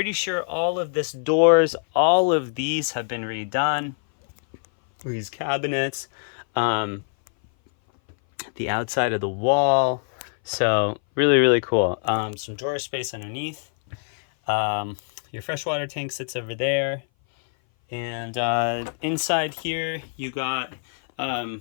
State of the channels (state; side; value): silent; right; 59 dB below the other